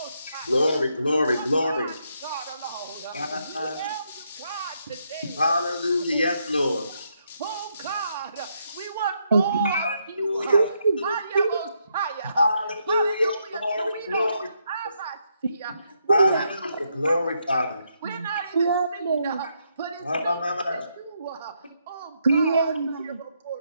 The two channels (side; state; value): both; inverted; correlation -0.77